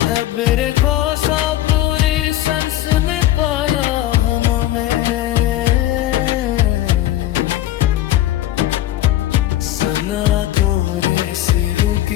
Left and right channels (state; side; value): quieter; right; 14.1 dB